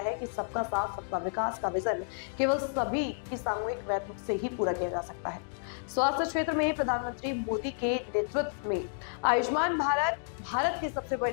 कि सबका साथ सबका विकास का विजन केवल सभी की सामूहिक प्रयत्न से ही पूरा किया जा सकता है। स्वास्थ्य क्षेत्र में प्रधानमंत्री मोदी के नेतृत्व में आयुष्मान भारत की सबसे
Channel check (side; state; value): right; silent; digital silence